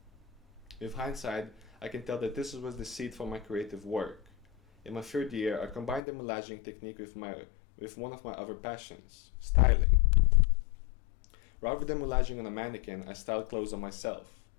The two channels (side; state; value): right; drops out; at 6.0 s